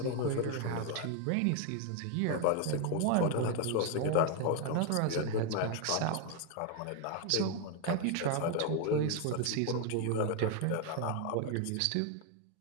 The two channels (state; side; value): different; both; correlation 0.01